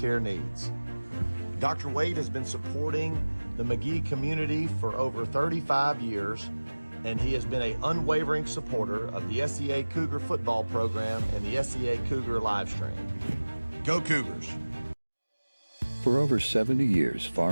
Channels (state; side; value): inverted; both; correlation -1.00